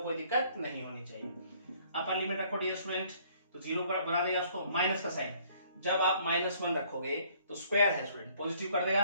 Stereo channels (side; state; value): both; inverted; correlation -0.60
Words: कोई दिक्कत नहीं होनी चाहिए। अपर लिमिट रखो डियर स्टूडेंट, तो 0 पर बना देगा उसको माइनस का साइन। जब आप -1 रखोगे तो स्क्वायर है स्टूडेंट, पॉजिटिव कर